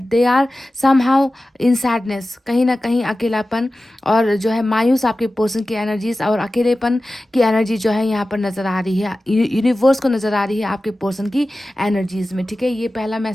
they are somehow in sadness, कहीं ना कहीं अकेलापन और जो है मायूस आपके पर्सन की एनर्जीज और अकेलेपन की एनर्जी जो है यहाँ पर नज़र आ रही है, यूनिवर्स को नज़र आ रही है आपके पर्सन की एनर्जीज में। ठीक है, ये पहला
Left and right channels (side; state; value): both; normal; correlation 0.95